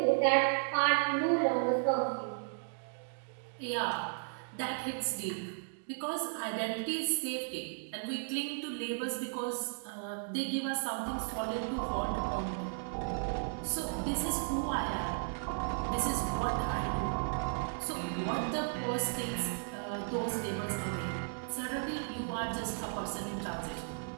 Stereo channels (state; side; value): silent; left; digital silence